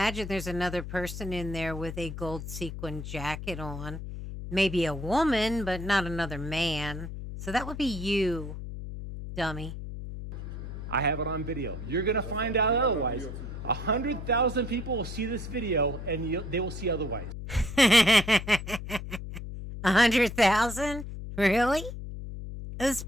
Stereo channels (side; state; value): left; noise; hum, 8 dB below the sound